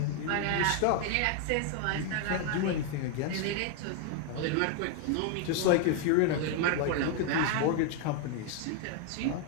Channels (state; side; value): different; both; correlation 0.00